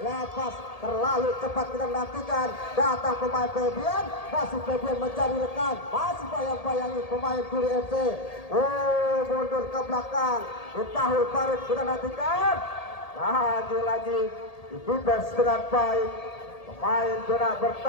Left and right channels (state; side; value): late; right; 1.8 ms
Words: terlalu cepat kita nantikan. Datang pemain Febian. Masih Febian mencari rekan. Masih bayang-bayangi pemain Guri FC. Mundur ke belakang. Tahul Farid kita nantikan. Lagi-lagi dibebas dengan baik. Pemain zona